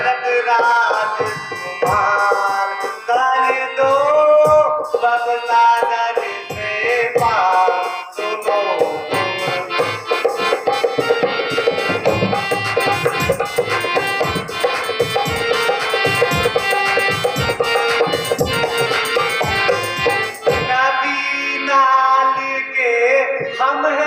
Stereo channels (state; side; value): identical; both; correlation 1.00